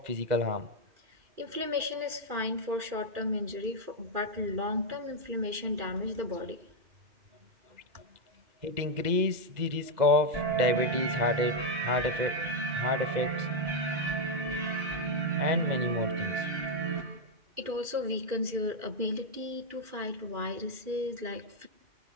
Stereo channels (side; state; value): left; late; 2.4 ms